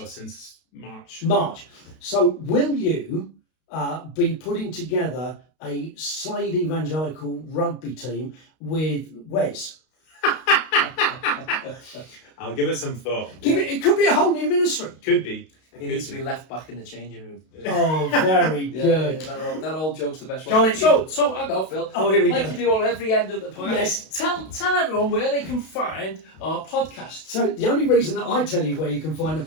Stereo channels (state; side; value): late; right; 32 ms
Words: Since March. So will you be putting together a Slade Evangelical rugby team with Wes? I'll give it some thought. It could be a whole new ministry. Could be. He needs to be left back in the changing room. Oh, very good. That old joke's the best Colin, one. So I go, Phil. Oh, here we go. Like you do on every end of the podcast. Yes. Tell everyone where they can find our podcast. So the only reason that I tell you where you can find the